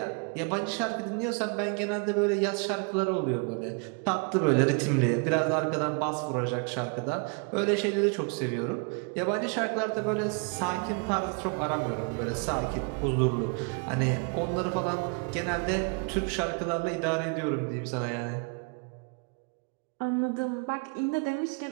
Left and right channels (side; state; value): left; quieter; 35.6 dB